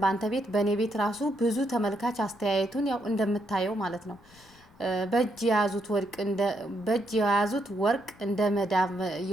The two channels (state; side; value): noise; left; rumble, 28 dB below the sound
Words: በአንተ ቤት በእኔ ቤት ራሱ ብዙ ተመልካች አስተያየቱን ያው እንደምታየው ማለት ነው። በእጅ የያዙት ወርቅ እንደ መዳብ